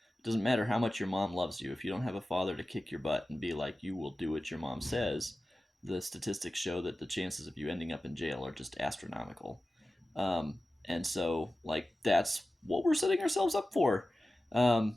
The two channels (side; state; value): both; normal; correlation 0.95